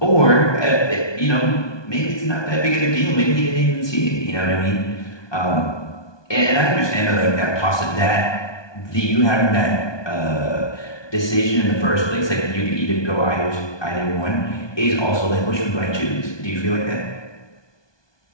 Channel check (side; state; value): right; late; 1.2 ms